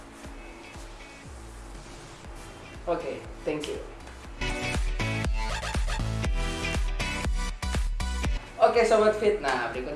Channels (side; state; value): both; identical; correlation 1.00